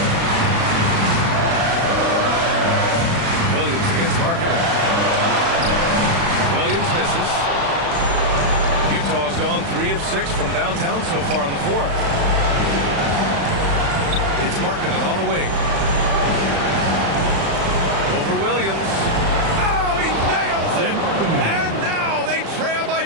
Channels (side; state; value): left; late; 36 ms